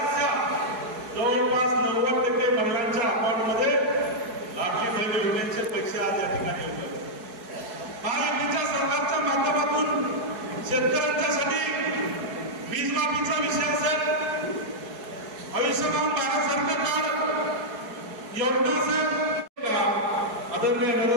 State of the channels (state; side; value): late; left; 4.7 ms